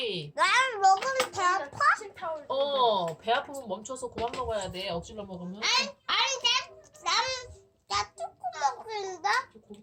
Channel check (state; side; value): identical; both; correlation 1.00